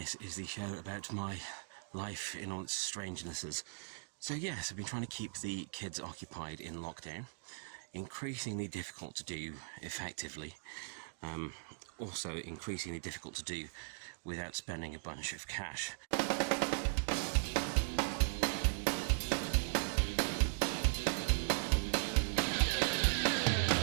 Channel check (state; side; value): silent; left; digital silence